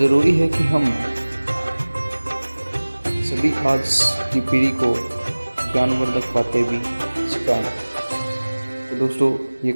है कि हम सभी आज की पीढ़ी को ज्ञानवर्धक बातें भी सिखाएं। तो दोस्तों, ये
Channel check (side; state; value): both; inverted; correlation -1.00